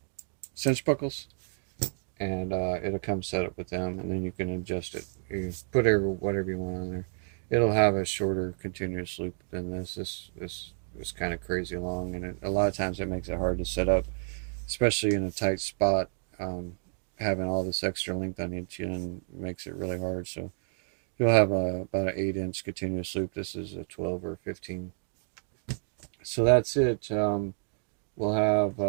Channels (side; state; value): left; silent; digital silence